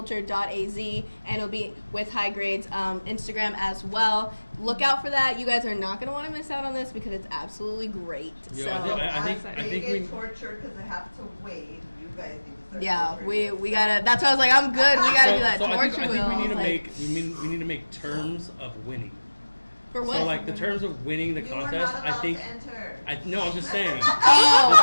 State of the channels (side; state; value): both; inverted; correlation -1.00